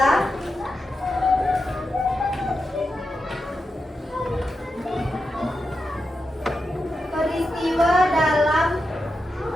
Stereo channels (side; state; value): both; normal; correlation 0.88